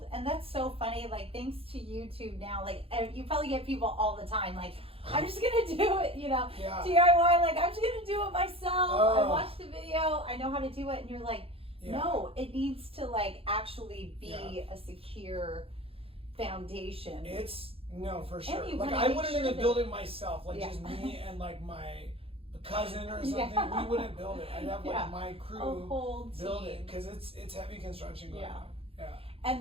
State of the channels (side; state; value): left; late; 0.27 ms